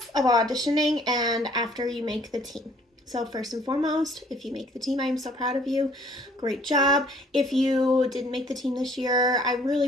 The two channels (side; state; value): both; normal; correlation 0.58